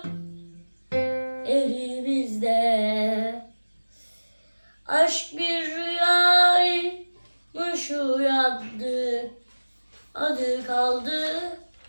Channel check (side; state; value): both; inverted; correlation -1.00